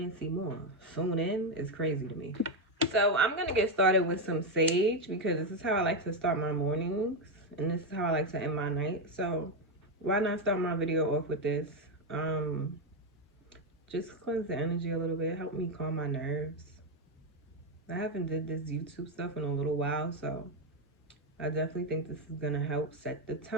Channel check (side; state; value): both; normal; correlation 0.06